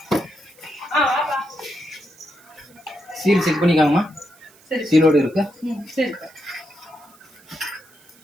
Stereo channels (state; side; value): noise; right; hiss, 27 dB below the sound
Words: Seal check பண்ணிக்காங்கம்மா. சரி, சீலோடு இருக்கு. சரி.